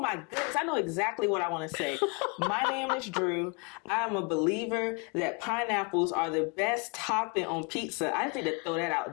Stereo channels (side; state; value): right; quieter; 32.3 dB